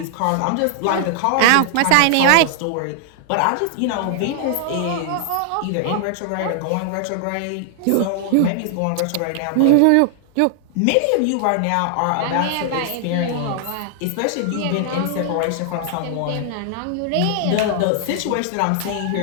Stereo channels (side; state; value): both; different; correlation -0.01